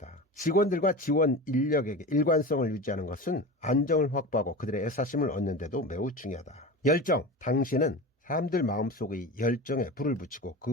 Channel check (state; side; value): normal; both; correlation 0.29